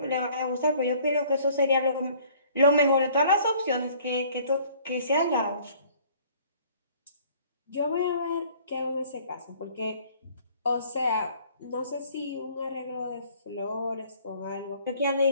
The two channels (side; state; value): both; inverted; correlation -0.56